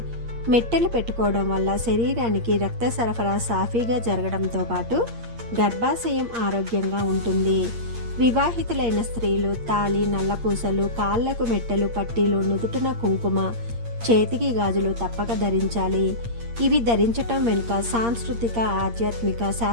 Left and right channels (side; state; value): left; late; 8.6 ms